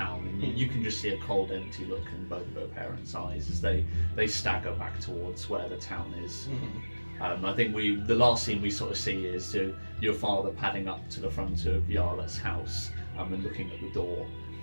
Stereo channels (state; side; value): inverted; both; correlation -1.00